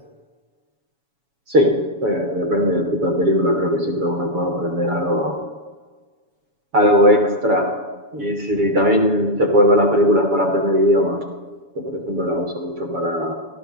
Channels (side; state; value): left; late; 7.1 ms